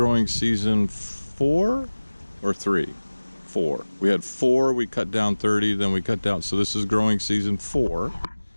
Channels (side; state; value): both; inverted; correlation -1.00